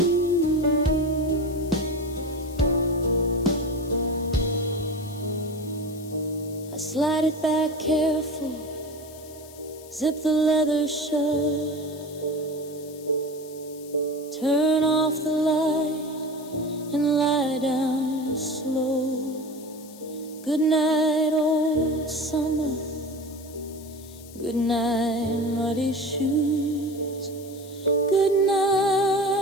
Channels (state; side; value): noise; left; hiss, 20 dB below the sound